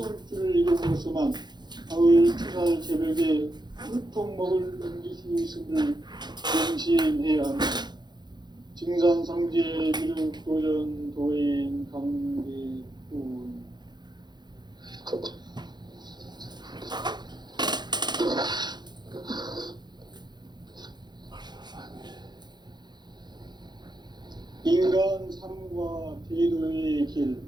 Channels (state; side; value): late; left; 0.21 ms